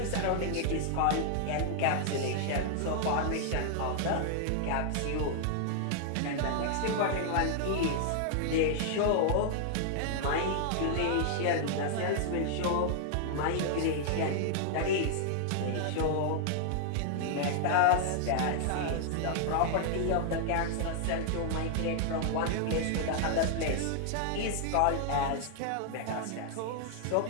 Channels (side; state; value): both; different; correlation 0.00